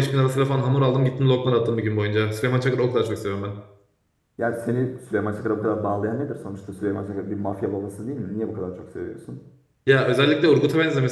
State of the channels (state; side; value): identical; both; correlation 1.00